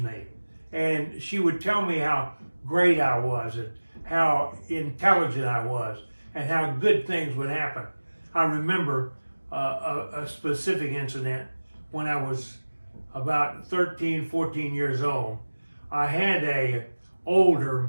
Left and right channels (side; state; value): both; inverted; correlation -1.00